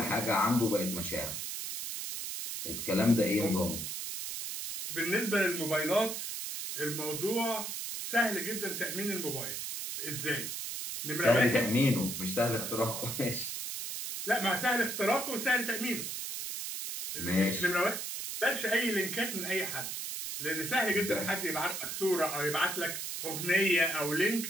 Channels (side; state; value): right; noise; hiss, 5 dB below the sound